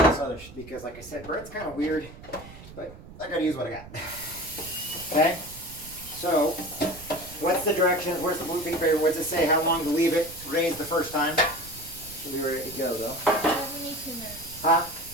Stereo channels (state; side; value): noise; right; rumble, 17 dB below the sound